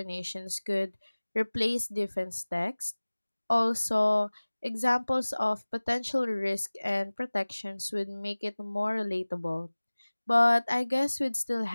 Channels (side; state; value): both; inverted; correlation -1.00